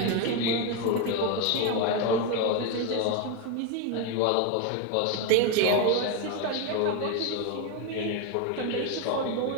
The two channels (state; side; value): different; both; correlation 0.02